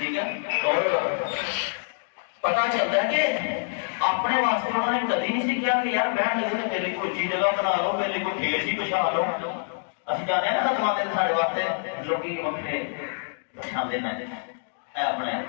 ہے، اور پتا چلتا ہے کہ اپنے واسطے انہوں نے کبھی نہیں سیکھا کہ یار بہن لگے تو میرے کو اچھی جگہ بنا لو، میرے کو ٹھیک سی بچھا لو۔ اسی جانے نا خدمات سارے واسطے لوگ وقتے بچھاندے نہ اپنے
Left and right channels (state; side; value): silent; right; digital silence